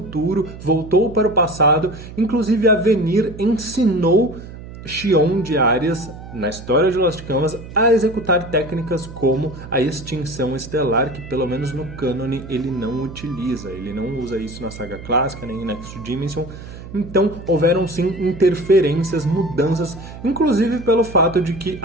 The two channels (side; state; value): right; noise; hum, 14 dB below the sound